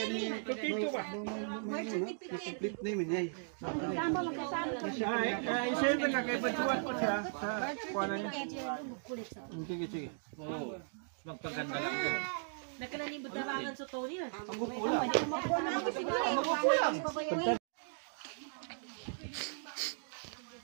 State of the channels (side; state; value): left; silent; digital silence